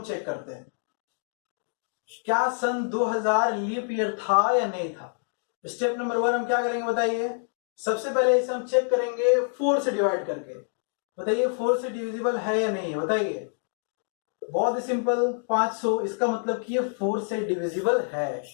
चेक करते हैं, क्या सन 2000 लीप ईयर था या नहीं था। स्टेप नंबर 1 हम क्या करेंगे बताइए। सबसे पहले इसे हम चेक करेंगे 4 से डिवाइड करके। बताइए 4 से डिविजिबल है या नहीं है, बताइए। बहुत ही सिंपल, 500, इसका मतलब कि ये 4 से डिविजिबल है।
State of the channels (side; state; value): right; silent; digital silence